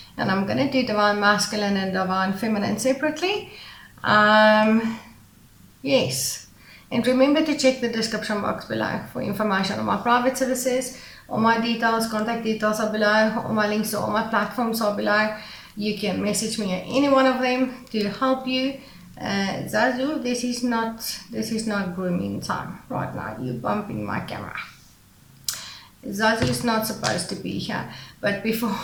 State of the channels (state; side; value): identical; both; correlation 1.00